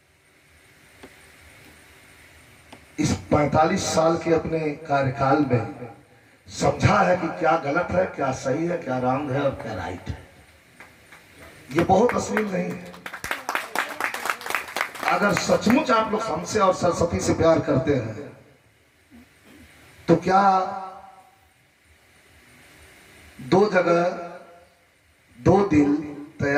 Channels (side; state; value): both; identical; correlation 1.00